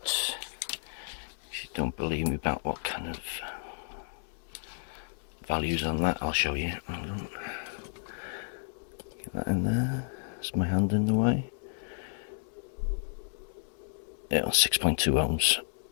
you don't believe me about what kind of values on that, I'll show you. Hold on. Get that in there. Is my hand in the way? Yeah, 6.2 ohms.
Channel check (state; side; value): silent; right; digital silence